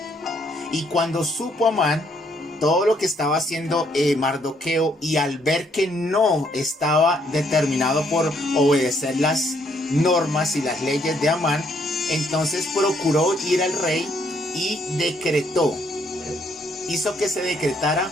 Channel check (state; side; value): normal; both; correlation 0.70